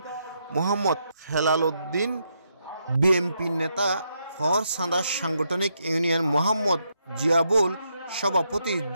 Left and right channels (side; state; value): both; inverted; correlation -0.79